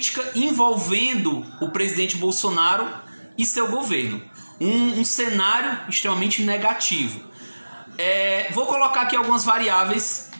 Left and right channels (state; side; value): inverted; both; correlation -1.00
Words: envolvendo o presidente Bolsonaro e seu governo. Um cenário extremamente negativo. Vou colocar aqui algumas variáveis